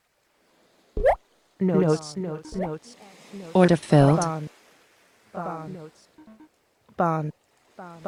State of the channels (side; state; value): both; identical; correlation 1.00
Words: Notes. Notes. Notes. Order filled. Bond. Bond. Notes. Bond. Bond.